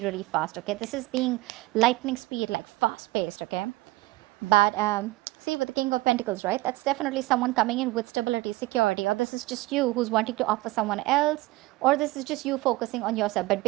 really fast, okay? This is being lightning speed, like fast-paced, okay? But see, with the King of Pentacles, right? That's definitely someone coming in with stability, security, or this is just you who's wanting to offer someone else, or this is just you focusing on yourself. But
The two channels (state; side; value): quieter; left; 20.0 dB